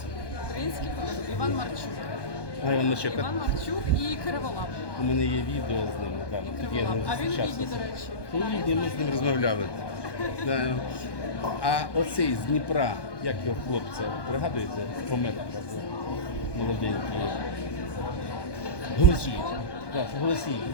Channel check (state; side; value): late; right; 1.2 ms